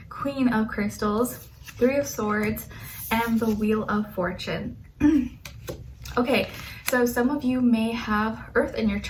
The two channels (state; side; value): identical; both; correlation 1.00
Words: Queen of Crystals, Three of Swords, and the Wheel of Fortune. Okay, so some of you may have Earth in your